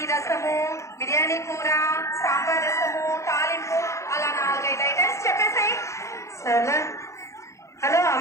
రసము, బిర్యానీ కూర, సాంబార్ రసము, తాలింపు, అలా 4-5 ఐటమ్స్ చెప్పేసాయి. సరేలే. హలో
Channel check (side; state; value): right; late; 0.14 ms